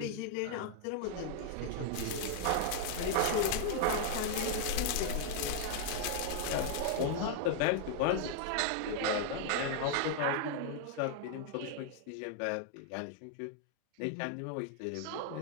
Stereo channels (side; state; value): both; different; correlation 0.00